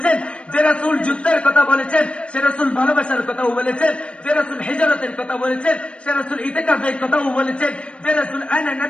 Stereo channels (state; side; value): late; right; 0.059 ms